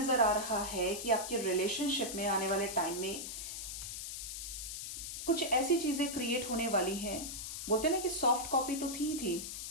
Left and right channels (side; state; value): left; noise; hiss, 6 dB below the sound